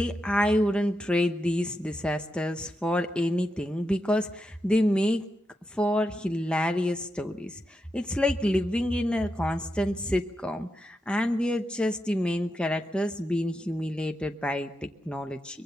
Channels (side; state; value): both; normal; correlation 0.86